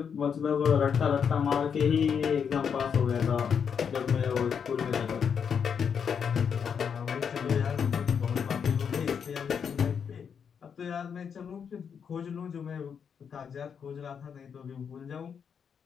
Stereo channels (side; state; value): right; quieter; 7.1 dB